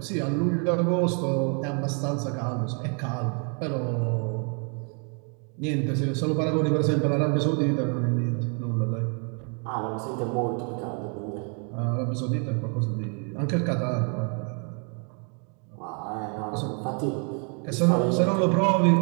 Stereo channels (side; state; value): left; quieter; 39.1 dB